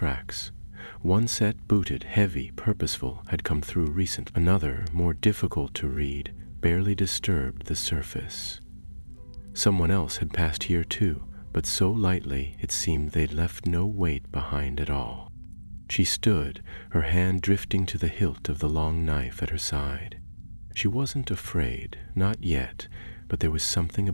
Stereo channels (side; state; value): both; inverted; correlation -1.00